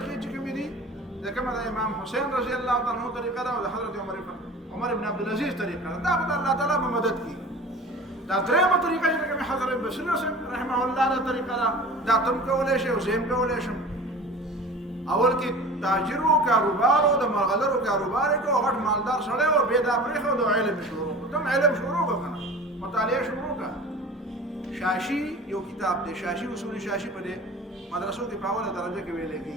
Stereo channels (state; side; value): normal; both; correlation 0.39